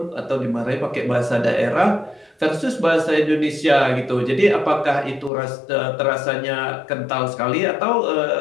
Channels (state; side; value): drops out; right; at 5.3 s